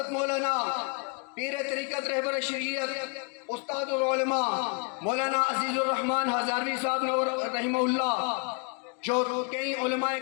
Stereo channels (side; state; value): right; quieter; 34.1 dB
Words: مولانا پیر طریقت رہبر شریعت استاد العلماء مولانا عزیز الرحمن ہزاروی صاحب نور رحمہ اللہ، جو کئی علماء